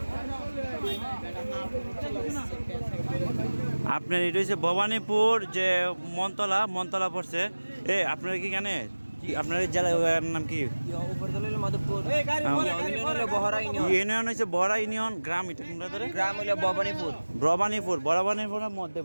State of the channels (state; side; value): inverted; both; correlation -1.00